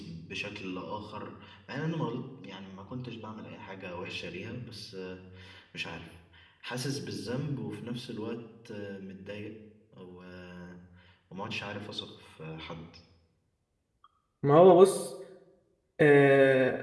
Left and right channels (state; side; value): identical; both; correlation 1.00